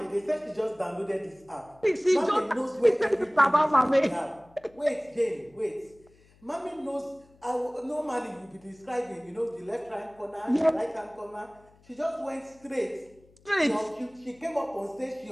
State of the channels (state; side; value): noise; left; hum, 29 dB below the sound